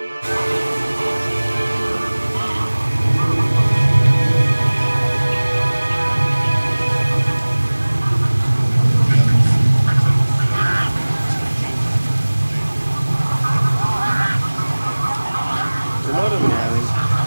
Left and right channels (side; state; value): both; inverted; correlation -1.00